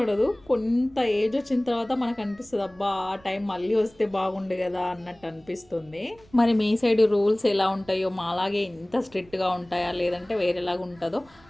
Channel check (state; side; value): noise; right; rumble, 27 dB below the sound